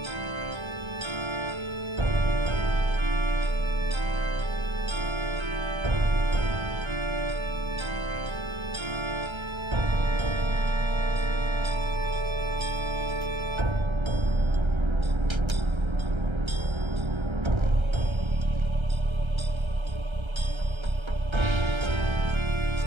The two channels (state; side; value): late; left; 1.3 ms